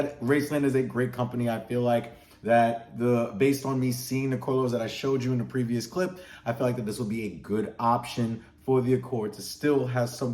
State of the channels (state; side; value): identical; both; correlation 1.00